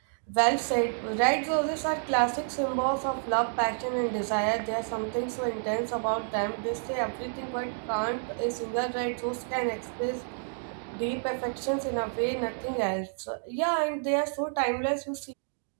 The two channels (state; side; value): silent; left; digital silence